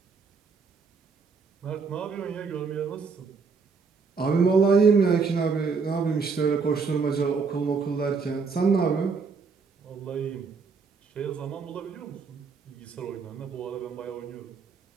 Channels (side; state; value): left; quieter; 5.0 dB